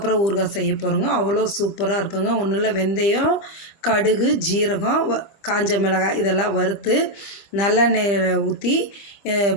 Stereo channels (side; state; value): right; late; 25 ms